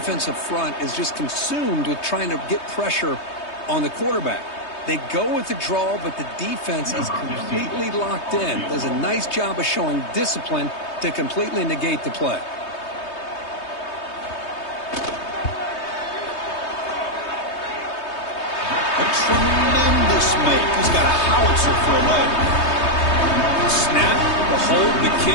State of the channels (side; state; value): right; late; 3.2 ms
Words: front is just consumed with trying to get pressure on the quarterback. They go with the draw, but the defense is completely locked in. Does a nice job of showing discipline to completely negate the play. A tremendous make. He's got a howitzer for a leg. Snap, the hold, the